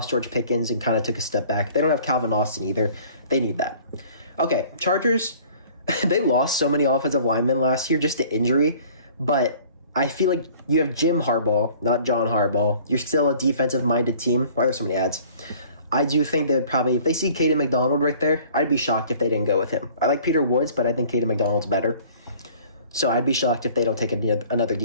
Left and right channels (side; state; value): both; inverted; correlation -0.51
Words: George Pickens and kind of took a step back. They don't have Calvin Austin either. They need that. Okay, Chargers, they lost so many offensive linemen last year just to injury, but I feel like you have Jim Harbaugh, not John Harbaugh. You're still a defensive-minded team. Why are there so many ads? I do think they would probably, if they see Caden McDonald right there, I'd be shocked if they didn't go with him. I like Peter Woods, but I think Caden McDonald's better. So I'd be shocked if they don't take another